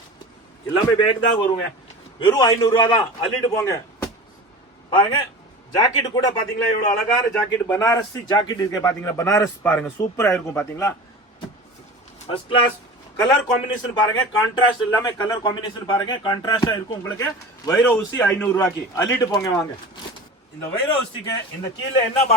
எல்லாமே பேக் தான் வருங்க. வெறும் 500 ரூபா தான், அள்ளிட்டு போங்க பாருங்க. ஜாக்கெட் கூட பாத்தீங்களா எவ்வளவு அழகான ஜாக்கெட், பனாரஸ் ஜாக்கெட் இருக்கு பாத்தீங்களா. பனாரஸ் பாருங்க சூப்பரா இருக்கும் பாத்தீங்களா. ஃபர்ஸ்ட் கிளாஸ் கலர் காம்பினேஷன் பாருங்க. கான்ட்ராஸ்ட் எல்லாமே கலர் காம்பினேஷன் பாருங்க, கான்ட்ராஸ்டா இருக்கும் உங்களுக்கு. வைரோ ஊசி 500 ரூபாய்க்கு அள்ளிட்டு போங்க வாங்க. இந்த வைரோ ஊசிக்கு இந்த கீழே என்ன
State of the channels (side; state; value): both; normal; correlation 0.35